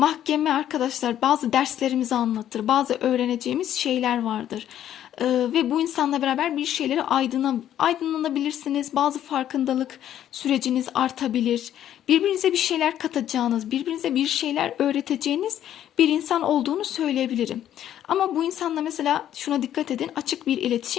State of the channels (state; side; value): quieter; right; 11.1 dB